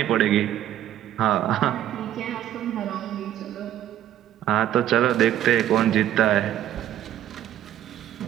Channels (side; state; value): left; quieter; 12.2 dB